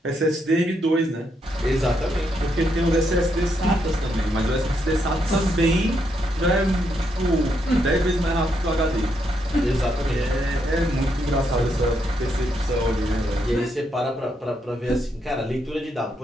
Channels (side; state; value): both; normal; correlation 0.78